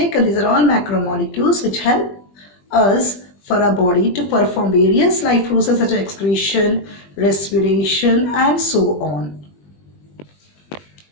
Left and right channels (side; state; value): right; late; 20 ms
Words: these are all macromolecules which help us for our body to perform various life processes such as excretion, respiration and so on.